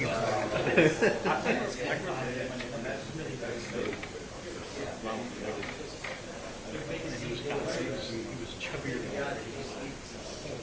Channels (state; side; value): identical; both; correlation 1.00